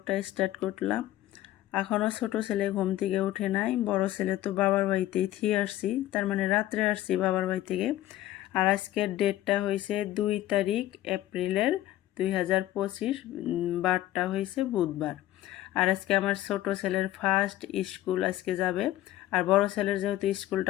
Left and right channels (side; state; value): right; quieter; 14.5 dB